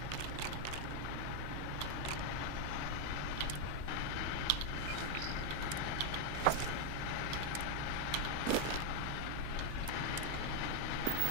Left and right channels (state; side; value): different; both; correlation 0.01